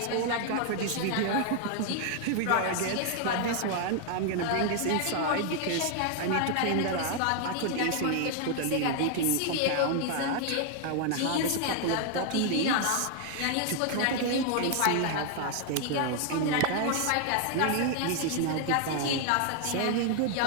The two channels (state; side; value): different; both; correlation 0.00